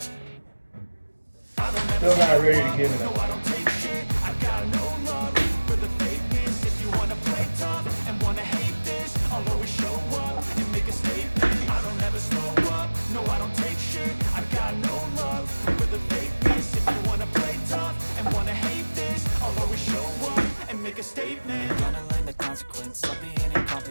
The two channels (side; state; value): both; inverted; correlation -1.00